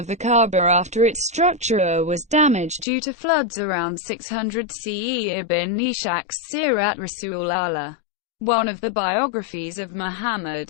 the Kaaba after its structure was damaged due to floods around 600 CE. Ibn Ishaq's Sirat Rasul Allah, one of the biographies of Muhammad,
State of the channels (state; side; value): drops out; right; at 2.9 s